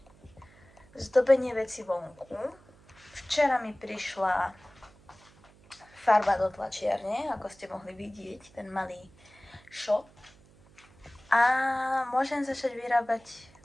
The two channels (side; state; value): right; noise; hum, 27 dB below the sound